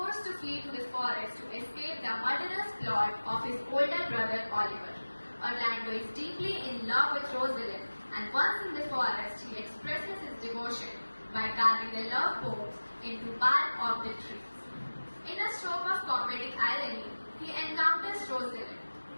to flee to the forest to escape the murderous plot of his older brother Oliver. Orlando is deeply in love with Rosalind, and once in the forest, he expresses his devotion by carving the love poems into bark of the trees. In a stroke of comedic irony, he encounters Rosalind.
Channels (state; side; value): inverted; both; correlation -1.00